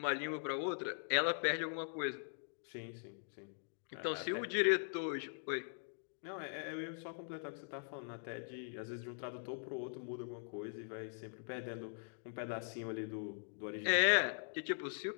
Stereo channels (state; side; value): silent; right; digital silence